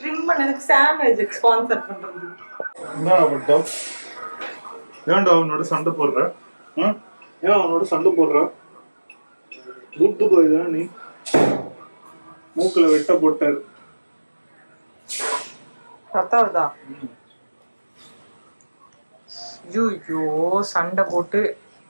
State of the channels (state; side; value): inverted; both; correlation -1.00